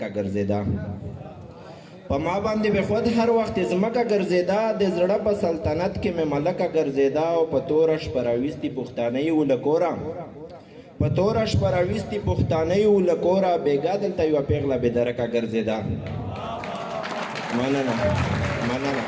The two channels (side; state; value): both; identical; correlation 1.00